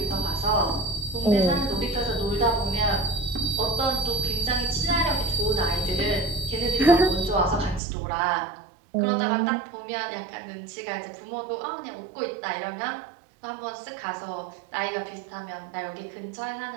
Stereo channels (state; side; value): drops out; left; at 7.8 s